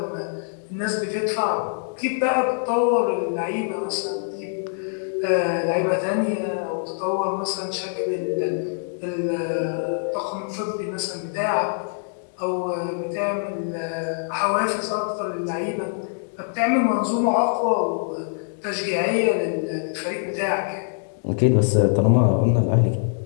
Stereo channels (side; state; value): right; silent; digital silence